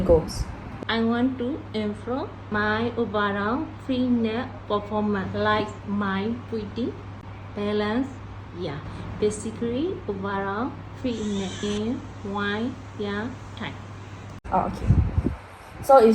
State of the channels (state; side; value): identical; both; correlation 1.00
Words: goals? I want to improve my overall fitness performance, like my breathing, balance, basically overall fitness in one year time. Oh, okay, so